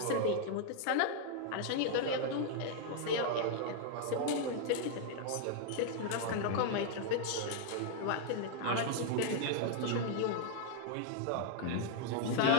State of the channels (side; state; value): both; different; correlation 0.00